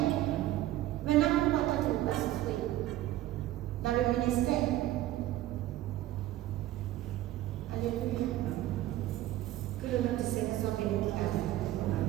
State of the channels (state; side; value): quieter; left; 14.7 dB